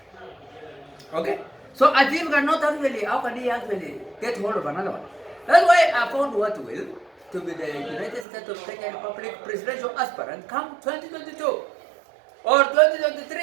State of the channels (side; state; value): left; drops out; at 8.2 s